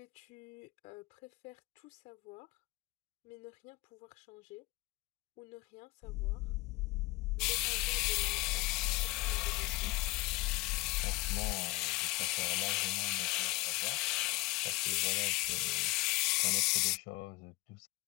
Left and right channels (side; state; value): right; quieter; 22.6 dB